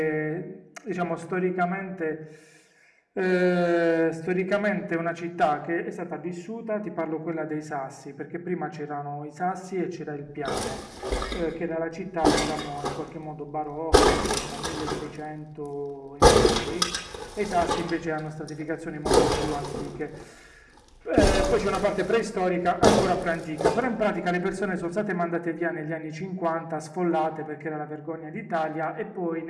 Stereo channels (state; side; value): identical; both; correlation 1.00